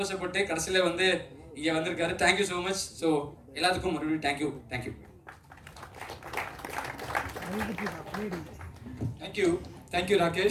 கடைசியில் வந்து இங்கே வந்திருக்காரு. Thank you so much. ஸோ எல்லாத்துக்கும் மறுபடியும் தேங்க்யூ. தேங்க்யூ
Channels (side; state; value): both; identical; correlation 1.00